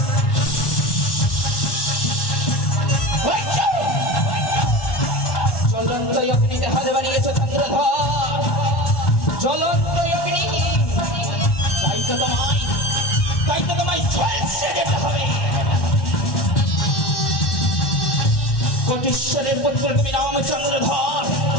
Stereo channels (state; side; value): late; right; 1.1 ms